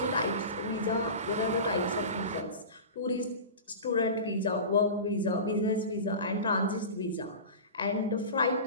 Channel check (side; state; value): both; inverted; correlation -0.30